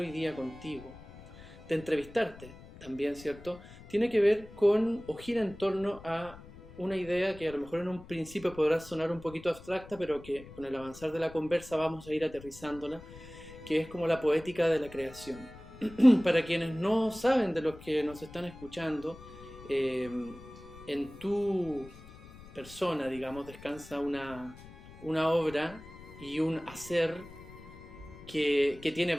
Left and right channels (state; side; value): noise; left; rumble, 18 dB below the sound